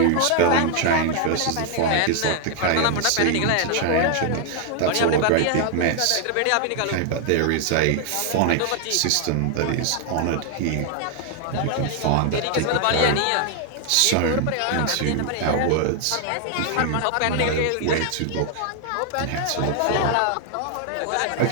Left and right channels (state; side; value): different; both; correlation 0.00